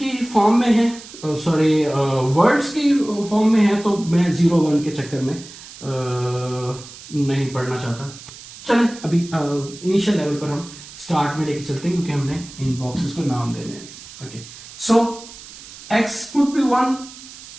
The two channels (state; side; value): noise; right; hiss, 16 dB below the sound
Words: फॉर्म में है, सॉरी वर्ड्स की फॉर्म में है, तो मैं 0 1 के चक्कर में नहीं पढ़ना चाहता। चलें अभी इनिशियल लेवल पर हम स्टार्ट में लेके चलते हैं क्योंकि हमने इन बॉक्सेस को नाम देने हैं। Okay, so x could be 1,